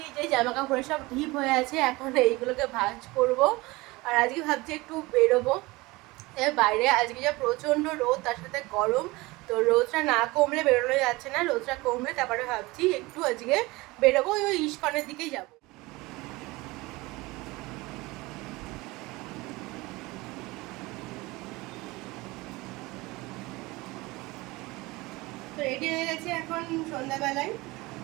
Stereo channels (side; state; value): left; quieter; 22.0 dB